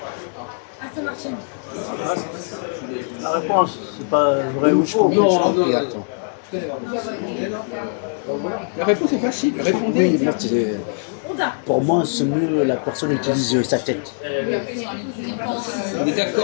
La réponse, c'est pas vrai ou faux. Non, attends. La réponse est facile, répondez. Oui, pour moi, c'est mieux la personne utilise sa tête. On est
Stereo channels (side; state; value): right; silent; digital silence